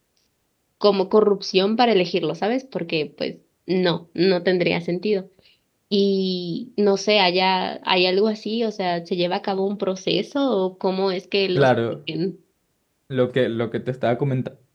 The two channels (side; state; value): both; identical; correlation 1.00